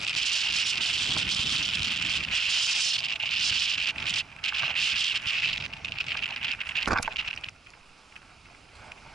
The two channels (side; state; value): left; quieter; 3.9 dB